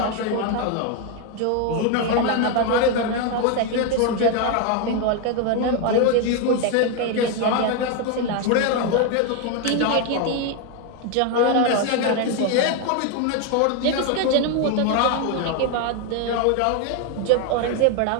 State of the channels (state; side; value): different; both; correlation 0.01